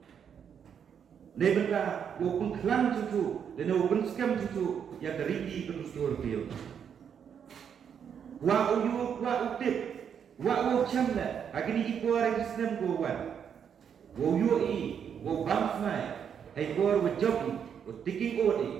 Nebenta open klan cucu dan open scam cucu yang terigi kedusur dia. Wa uyu wa utip wa u chamla agni ipo orang Islam ko wan. Wa uyu i wa bams mai hai ko wa job wa tiking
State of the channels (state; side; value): quieter; left; 7.8 dB